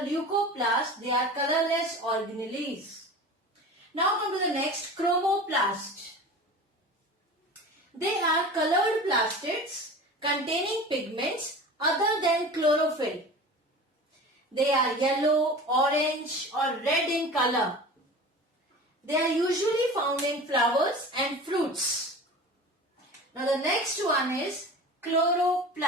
leucoplast. They are colorless organelles. Now come to the next, chromoplast. They are colored plastids containing pigments other than chlorophyll. They are yellow, orange or red in color. They are usually found in flowers and fruits. Now the next one is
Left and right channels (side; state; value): both; normal; correlation 0.36